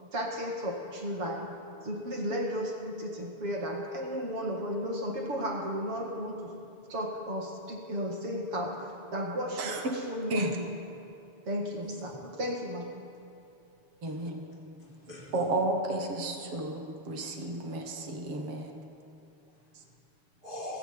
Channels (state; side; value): late; left; 6.9 ms